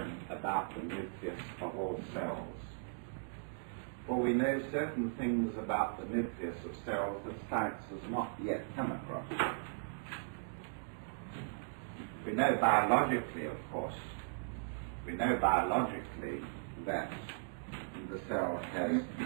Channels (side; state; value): left; silent; digital silence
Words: about the nucleus of all cells, for we know certain things about the nucleus of cells that science has not yet come across. We know biologically, of course, that the cell has